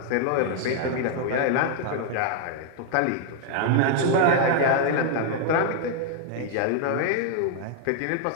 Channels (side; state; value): both; different; correlation 0.00